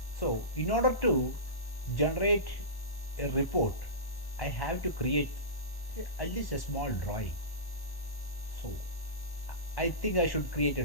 So in order to generate a report, I have to create at least a small drawing. So I think I should create a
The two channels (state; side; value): late; right; 1.0 ms